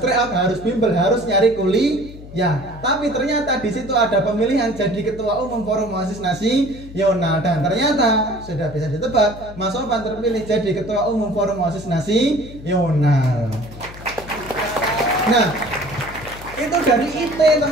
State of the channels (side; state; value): left; noise; hum, 16 dB below the sound